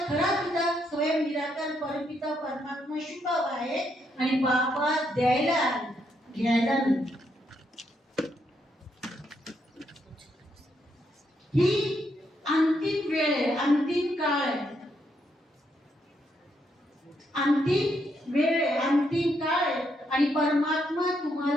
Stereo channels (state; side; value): normal; both; correlation 0.77